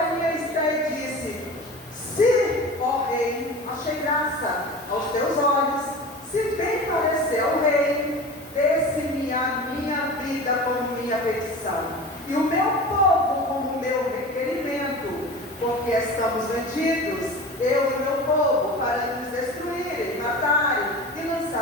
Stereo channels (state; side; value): normal; both; correlation 0.34